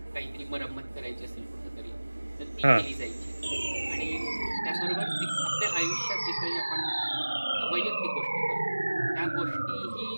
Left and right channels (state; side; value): inverted; both; correlation -1.00